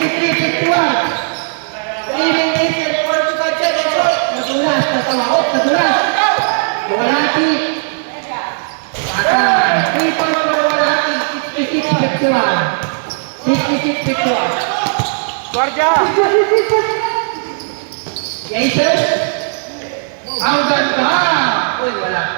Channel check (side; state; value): left; silent; 65 dB below the other